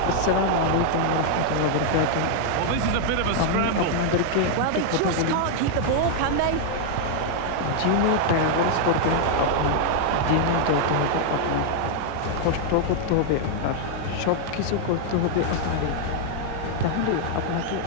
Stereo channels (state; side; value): different; both; correlation -0.01